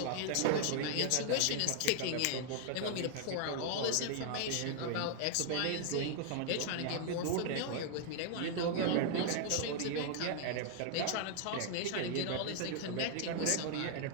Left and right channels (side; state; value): both; different; correlation 0.00